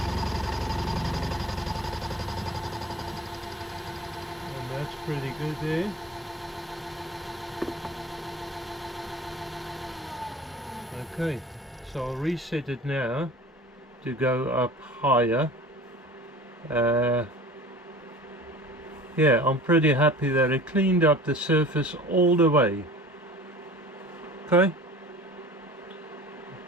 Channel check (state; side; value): normal; both; correlation 0.43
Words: And that's pretty good there. Okay, so I'll reset it now to go up higher. Yeah, I'm pretty happy that it cleaned up the surface all the way. Okay.